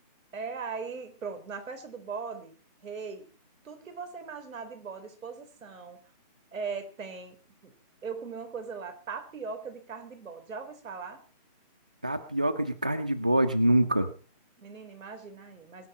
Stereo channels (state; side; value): inverted; both; correlation -0.73